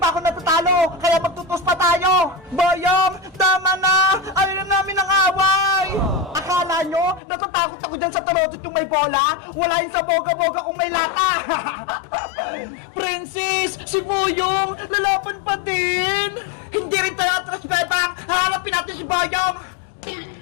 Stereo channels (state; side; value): drops out; right; at 7.2 s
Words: ako natatalo, kaya magtutos pa tayo! Bayang! Tama na! Ayaw na namin ang away! Akala nyo, natatakot ako dyan sa tarotot yung may bola? Wala yung sa boga-boga kung may lata! Princess! Si Boyong! Lalaban pa din! Hindi rin tayo atras, Bebang! Haharapin natin si Bayang!